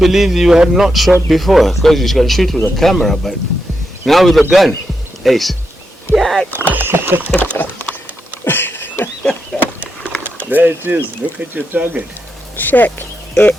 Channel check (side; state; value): both; normal; correlation 0.85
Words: you had not shot before, because you can shoot with a camera, but now with a gun, ace. Yeah. There it is. Look at your target. Check it